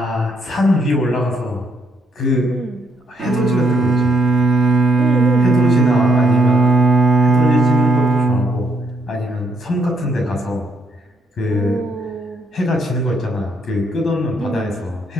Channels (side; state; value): both; normal; correlation 0.72